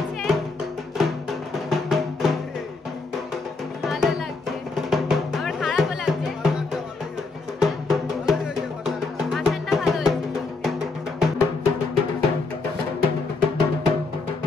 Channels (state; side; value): quieter; right; 3.9 dB